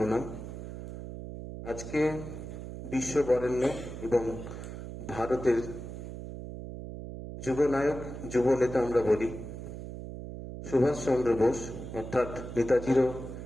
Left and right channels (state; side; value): noise; right; hum, 9 dB below the sound